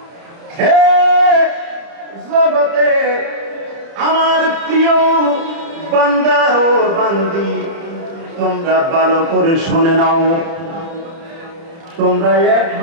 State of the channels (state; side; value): late; left; 30 ms